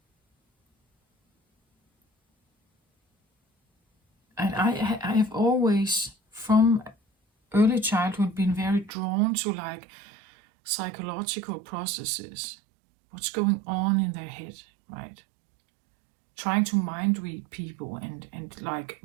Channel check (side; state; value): left; drops out; at 8.9 s